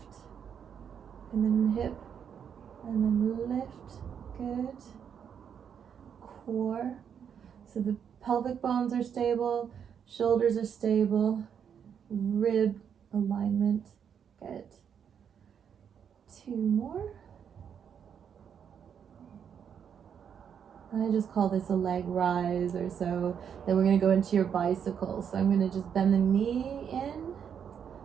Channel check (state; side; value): quieter; left; 7.8 dB